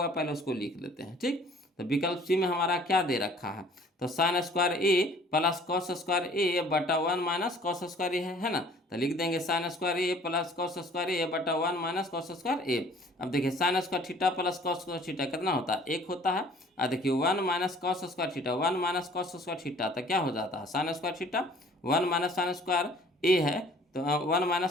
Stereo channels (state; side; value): normal; both; correlation 0.53